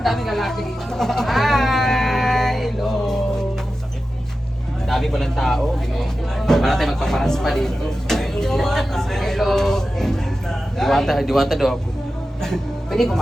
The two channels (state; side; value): normal; both; correlation 0.93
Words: daming lalaki dito. Hi! Hello! Dami palang tao. Para tayo magpaparas pa dito. Hello! Diwata daw ako. Pwede